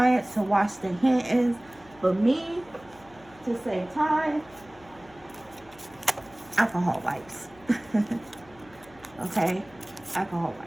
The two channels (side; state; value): left; noise; hum, 25 dB below the sound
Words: to wash their hands. But me, to save time, alcohol wipes. Okay? Alcohol